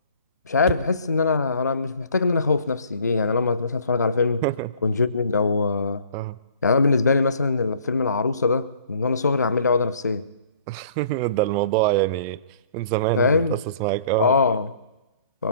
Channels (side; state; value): both; inverted; correlation -0.55